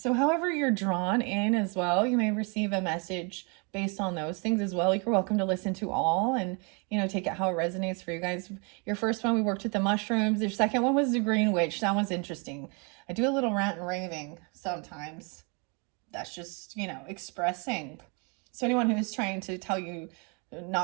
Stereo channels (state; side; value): quieter; left; 33.4 dB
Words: however you're drawn in as well, you may receive a message based on those things as well. You're welcome to listen to all and, take it how it resonates for you guys. Your first one, we worked with the mushrooms. Your second one was the green witch. That one's interesting. I do a little rant and raving sometimes. That's just, expressing. So anyone who's trying to tell you